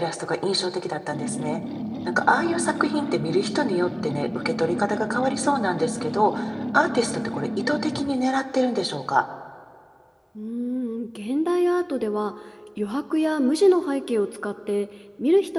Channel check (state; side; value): identical; both; correlation 1.00